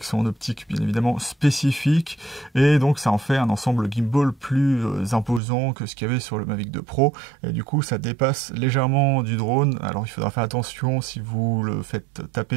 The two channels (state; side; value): drops out; left; at 5.4 s